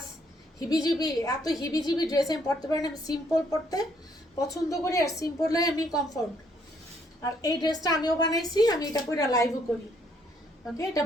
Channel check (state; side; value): normal; both; correlation 0.69